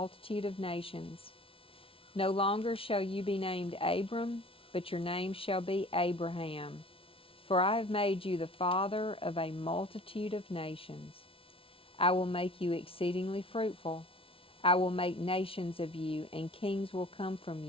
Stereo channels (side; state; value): right; late; 0.26 ms